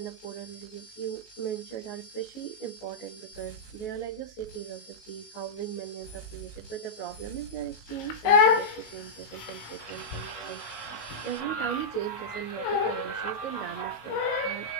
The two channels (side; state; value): right; late; 19 ms